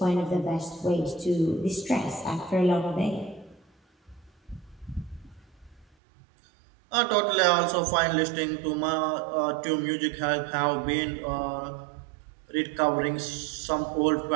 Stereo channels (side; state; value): left; drops out; at 5.9 s